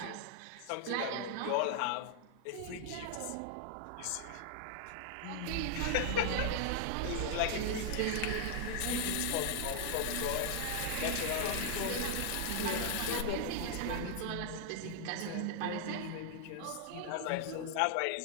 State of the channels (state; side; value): different; both; correlation 0.00